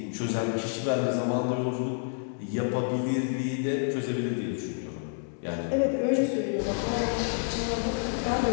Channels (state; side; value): silent; right; 59 dB below the other